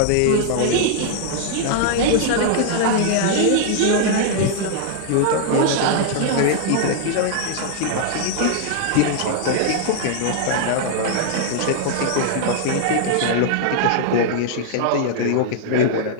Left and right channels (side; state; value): both; different; correlation -0.01